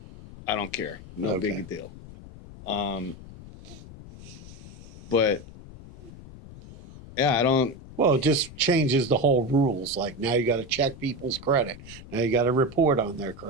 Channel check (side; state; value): left; noise; rumble, 17 dB below the sound